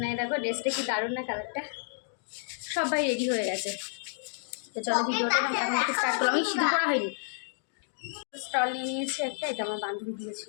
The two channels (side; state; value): right; silent; digital silence